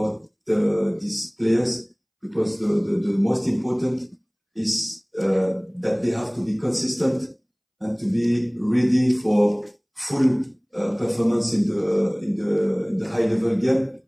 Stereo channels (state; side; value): identical; both; correlation 1.00